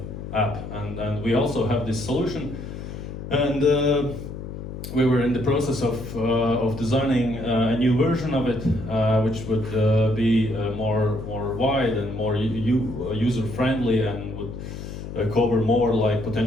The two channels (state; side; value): noise; left; hum, 9 dB below the sound